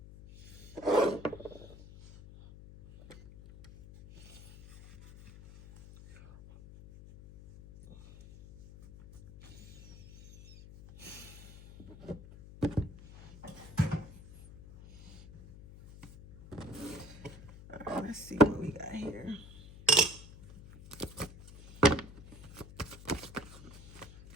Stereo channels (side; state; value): left; noise; hum, 17 dB below the sound